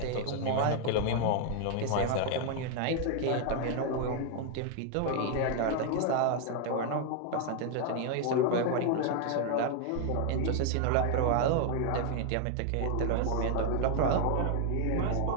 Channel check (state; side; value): different; both; correlation 0.00